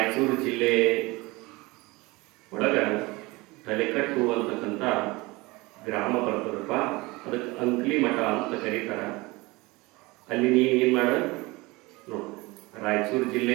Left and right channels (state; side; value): quieter; left; 23.0 dB